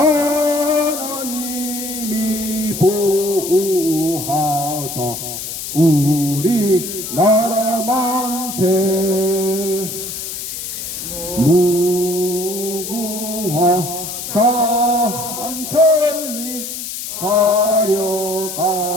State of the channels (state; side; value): noise; left; hiss, 7 dB below the sound